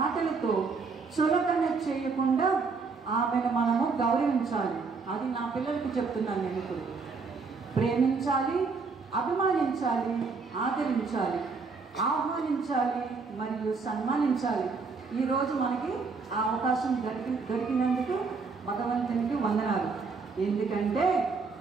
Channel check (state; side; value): quieter; left; 4.6 dB